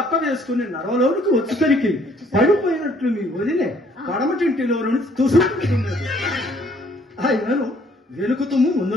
వేసుకుని నరవలోనికి వచ్చేసరికి పడిపోయినట్లు మీ వదిలే పడమటింటిలో నుంచి తుసుకుతున్నది. ఆయనను వెనుకుతుము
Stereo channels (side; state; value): both; normal; correlation 0.62